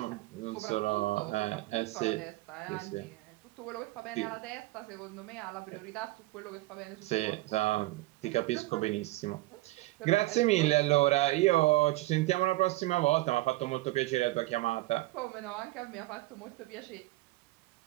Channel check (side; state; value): left; quieter; 19.5 dB